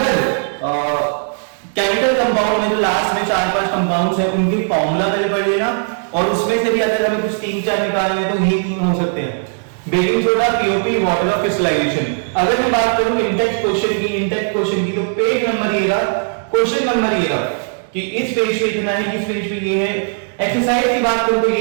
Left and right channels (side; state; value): left; silent; digital silence